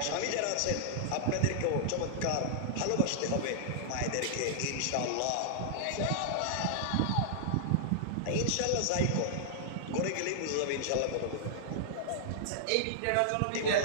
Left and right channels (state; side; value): different; both; correlation -0.01